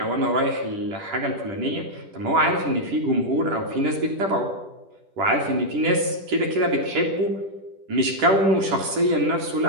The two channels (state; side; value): late; left; 10 ms